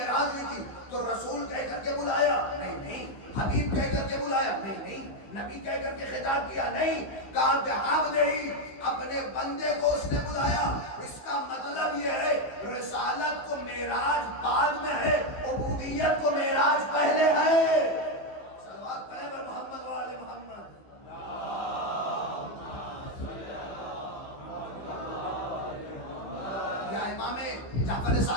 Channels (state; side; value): late; right; 15 ms